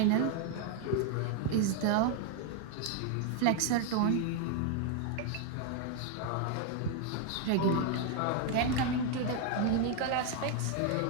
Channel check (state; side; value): different; both; correlation 0.01